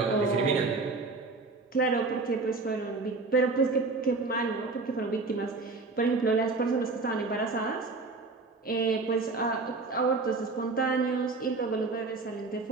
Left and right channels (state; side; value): quieter; left; 3.8 dB